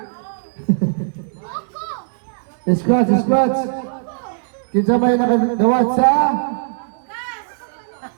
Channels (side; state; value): left; silent; digital silence